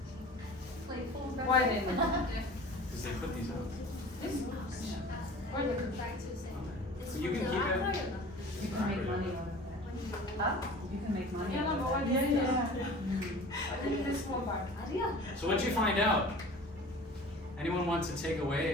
Why then? Because they put these out. Where the So you can keep it. You can make money on it. Huh? You can make money Yeah, no, on but it. why did you I think this small part. So what'd you find out? Anyone want to take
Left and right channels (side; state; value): both; normal; correlation 0.42